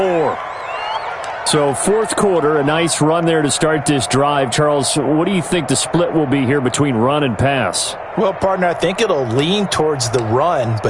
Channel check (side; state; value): both; identical; correlation 1.00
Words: So 4th quarter, a nice run there to start this drive. Charles, what do you think the split will be here between run and pass? Well, partner, I think it'll lean towards the run,